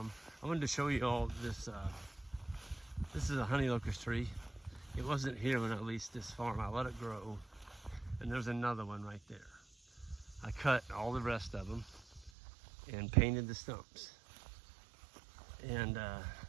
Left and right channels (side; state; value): left; drops out; at 12.3 s